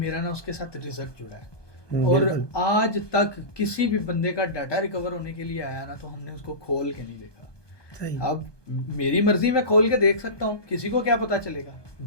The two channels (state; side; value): late; right; 1.2 ms